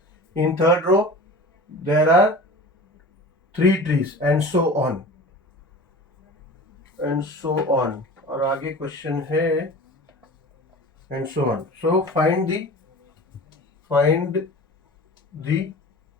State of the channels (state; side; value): normal; both; correlation 0.37